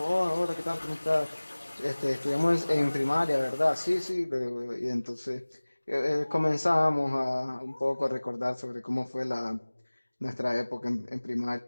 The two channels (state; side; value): inverted; both; correlation -1.00